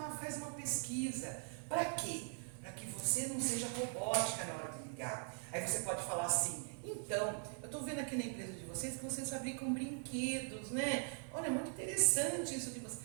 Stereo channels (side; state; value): left; silent; 50 dB below the other